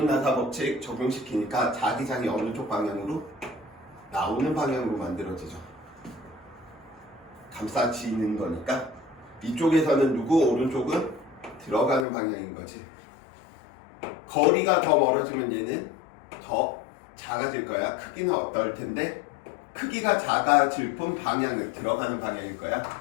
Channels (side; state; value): right; drops out; at 12.1 s